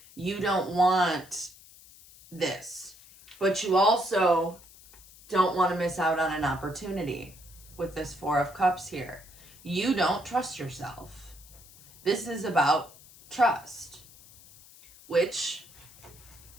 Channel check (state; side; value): noise; left; hiss, 22 dB below the sound